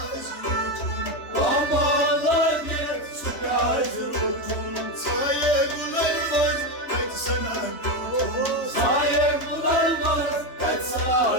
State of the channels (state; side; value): late; right; 3.2 ms